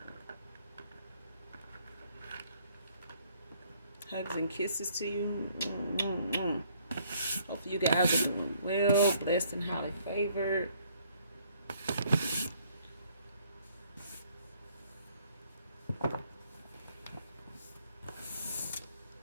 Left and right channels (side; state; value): both; inverted; correlation -0.64